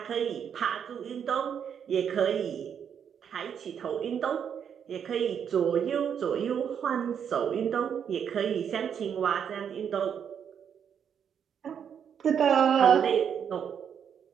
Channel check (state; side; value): quieter; left; 8.0 dB